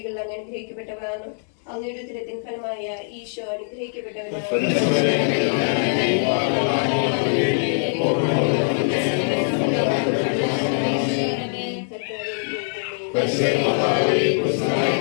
അങ്ങ് അനുഗ്രഹിക്കപ്പെട്ടവളാണ്. അങ്ങയുടെ ഉദരത്തിൻ ഫലമായ ഈശോ അനുഗ്രഹിക്കപ്പെട്ടവനാണ്.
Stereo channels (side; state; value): right; silent; digital silence